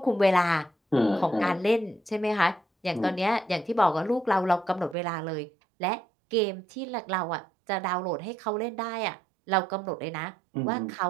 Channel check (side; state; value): left; drops out; at 5.0 s